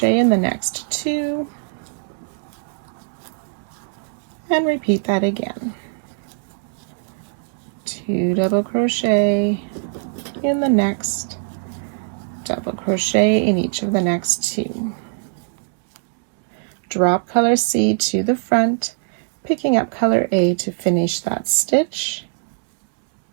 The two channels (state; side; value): silent; left; digital silence